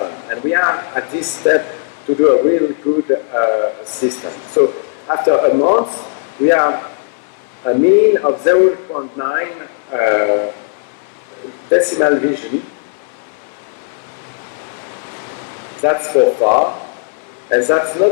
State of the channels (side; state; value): right; silent; 61 dB below the other